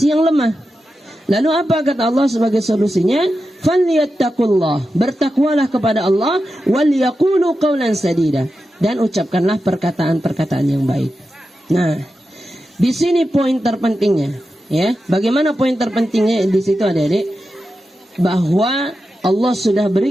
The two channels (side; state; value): both; normal; correlation 0.90